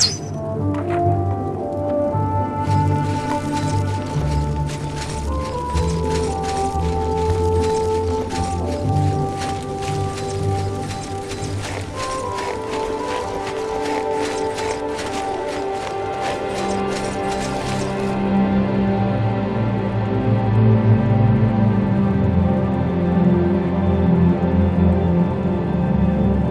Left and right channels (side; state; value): both; identical; correlation 1.00